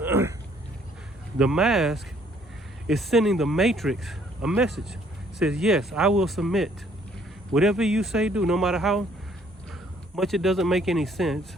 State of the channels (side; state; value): both; normal; correlation 0.63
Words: the mask is sending the matrix a message. It says, yes, I will submit. Whatever you say, do, no matter how much it doesn't make any sense,